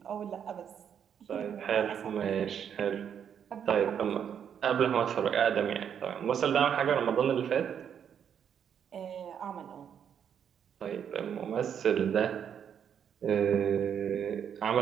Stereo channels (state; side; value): quieter; left; 8.3 dB